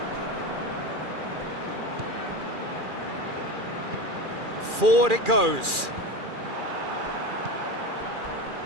Forward it goes.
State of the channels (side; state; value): left; late; 2.4 ms